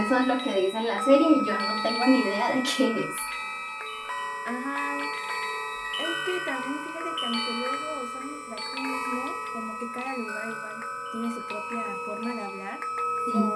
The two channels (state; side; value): identical; both; correlation 1.00